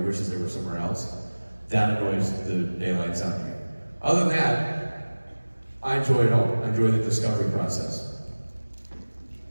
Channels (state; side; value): inverted; both; correlation -1.00